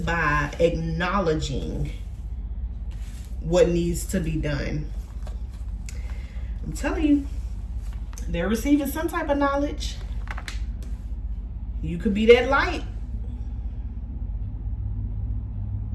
by acknowledging what needs to be done. I'm telling you, they're receiving some type of knowledge. You could be that light.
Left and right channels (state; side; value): identical; both; correlation 1.00